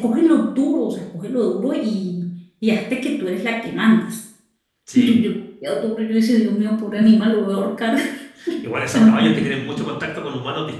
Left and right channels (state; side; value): identical; both; correlation 1.00